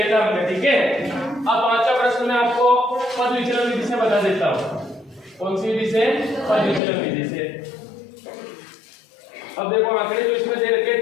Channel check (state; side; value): drops out; right; at 6.8 s